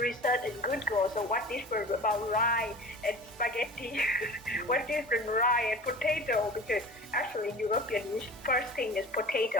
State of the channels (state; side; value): normal; both; correlation 0.38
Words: research in Google. So what different about rye and spaghetti? What different rye and potato? Because actually European first thing is